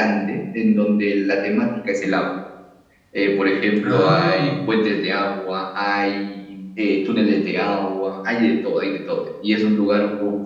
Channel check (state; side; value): identical; both; correlation 1.00